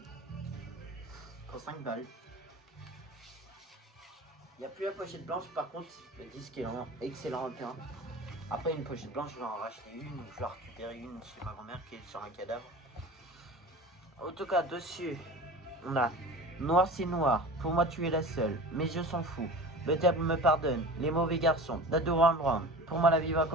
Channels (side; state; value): both; normal; correlation 0.36